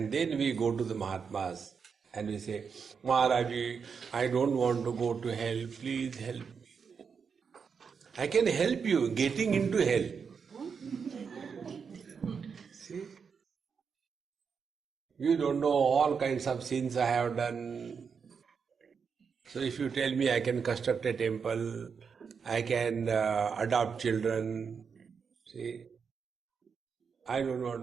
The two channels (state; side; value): quieter; left; 6.1 dB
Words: then we go to the Mahatmas and we say, Maharaji, I don't want to go to hell, please help me. I can help you getting into hell. See? You don't know all kinds of sins I have done. So if you tell me I can construct a temple, I can adopt children, see, I don't want